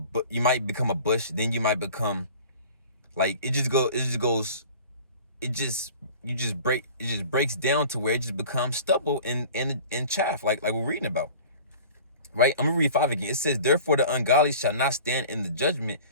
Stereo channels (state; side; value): inverted; both; correlation -0.43